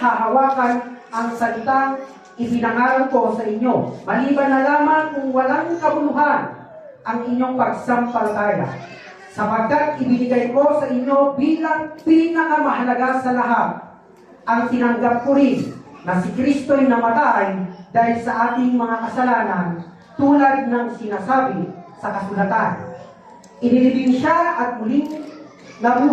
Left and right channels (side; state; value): both; identical; correlation 1.00